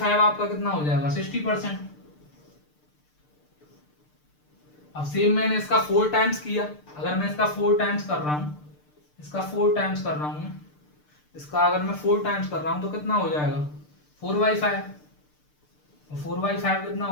आपका कितना हो जाएगा 60%। अब सेम मैंने इसका 4 टाइम्स किया, अगर मैं इसका 4 टाइम्स कर रहा हूँ, इसका 4 टाइम्स कर रहा हूँ, इसका अगर मैं 4 टाइम्स कर रहा हूँ तो कितना हो जाएगा 4/5, और 4/5 कितना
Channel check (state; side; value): late; right; 6.7 ms